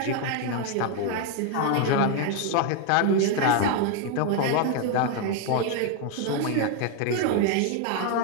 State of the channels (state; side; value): different; both; correlation 0.01